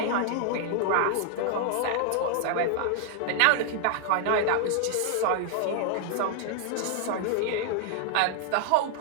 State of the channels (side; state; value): both; different; correlation 0.00